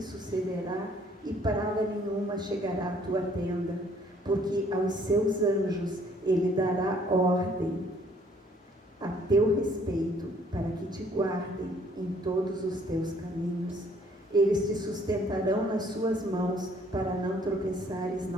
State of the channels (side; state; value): both; normal; correlation 0.61